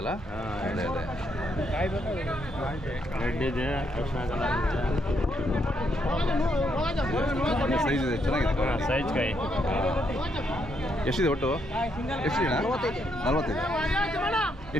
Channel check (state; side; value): normal; both; correlation 0.76